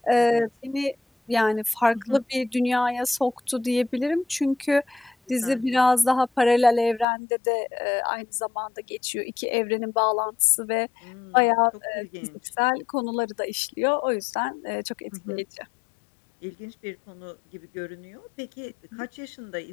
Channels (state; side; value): drops out; right; at 7.1 s